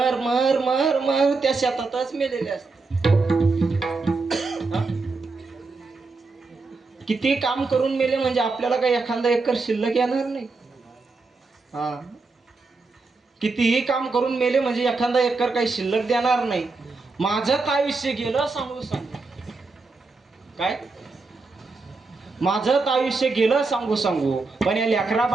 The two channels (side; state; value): left; quieter; 3.9 dB